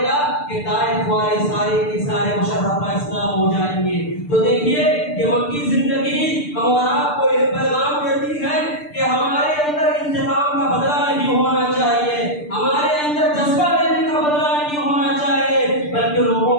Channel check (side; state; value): right; late; 6.8 ms